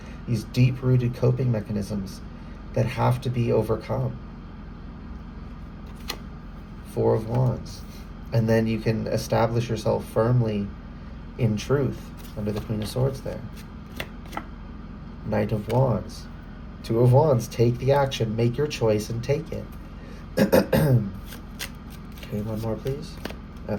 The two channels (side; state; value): both; identical; correlation 1.00